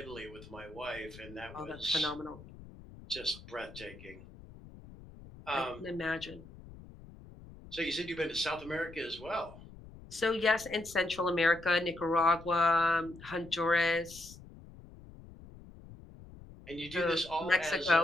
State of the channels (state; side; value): noise; left; rumble, 18 dB below the sound